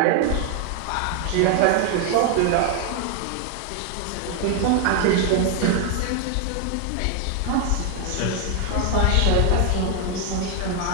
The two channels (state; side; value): different; both; correlation 0.00